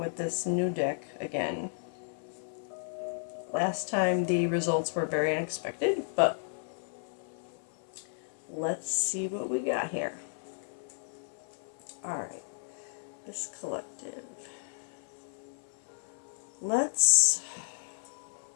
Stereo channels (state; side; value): silent; right; 56 dB below the other